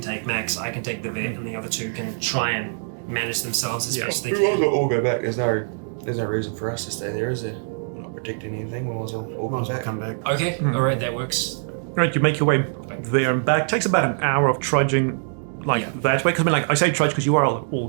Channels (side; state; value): left; silent; digital silence